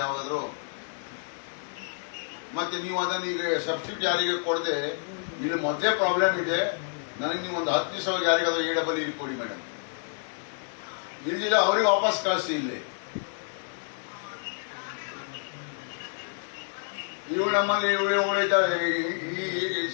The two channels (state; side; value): silent; right; digital silence